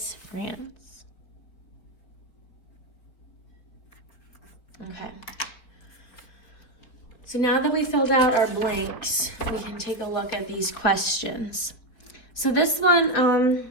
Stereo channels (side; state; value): right; late; 4.6 ms